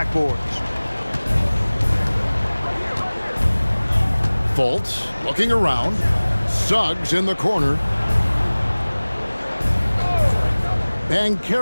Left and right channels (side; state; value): both; inverted; correlation -1.00